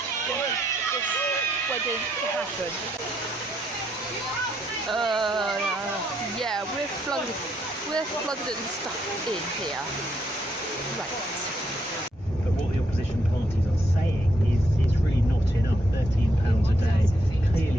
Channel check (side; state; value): both; normal; correlation 0.76